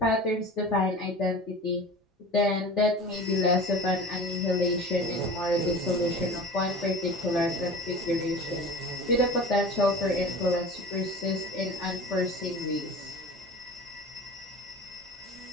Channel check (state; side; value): normal; both; correlation 0.37